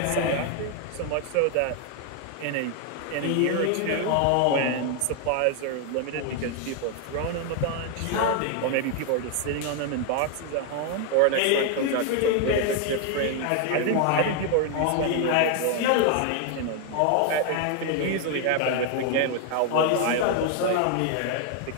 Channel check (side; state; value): both; different; correlation 0.00